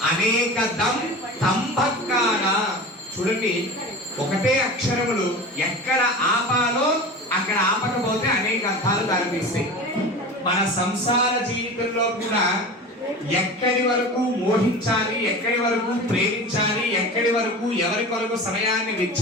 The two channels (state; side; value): normal; both; correlation 0.32